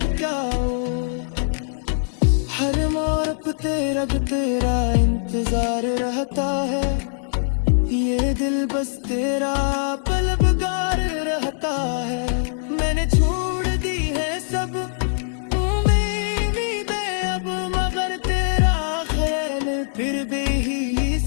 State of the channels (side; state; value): right; silent; digital silence